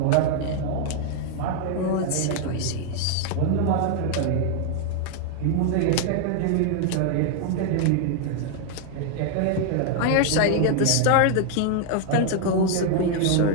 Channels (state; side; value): different; both; correlation 0.00